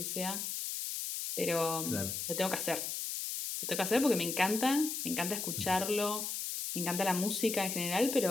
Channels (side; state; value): left; noise; hiss, 3 dB below the sound